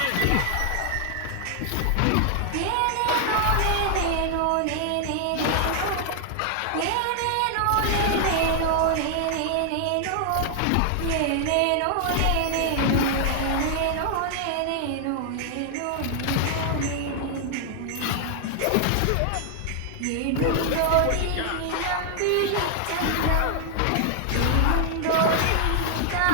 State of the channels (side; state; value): both; different; correlation 0.00